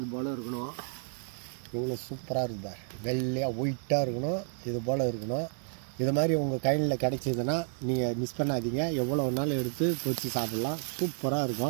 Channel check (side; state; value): left; silent; 56 dB below the other